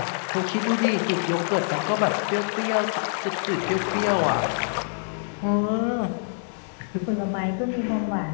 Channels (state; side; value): silent; right; 56 dB below the other